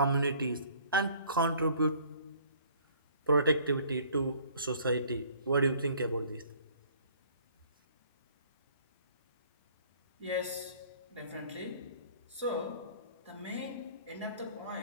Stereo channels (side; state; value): both; inverted; correlation -0.56